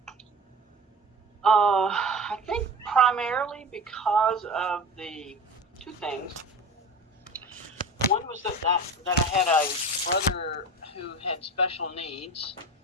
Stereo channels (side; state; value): both; normal; correlation 0.33